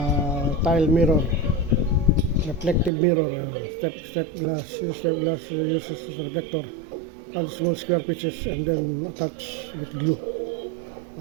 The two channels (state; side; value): drops out; left; at 2.9 s